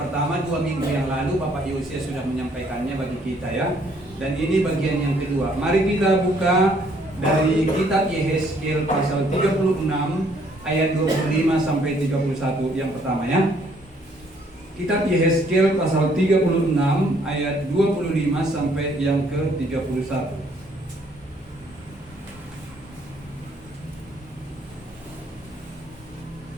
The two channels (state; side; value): normal; both; correlation 0.65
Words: 2 minggu yang lalu Bapak Yosia sudah menyampaikannya bagi kita ya. Dan ini bagian yang kedua. Mari kita buka dari kitab Yehezkiel pasal 36 ayat 25 sampai 31 yang pertama ya. Kitab Yehezkiel pasal 36 ayat 25 sampai yang ke-31.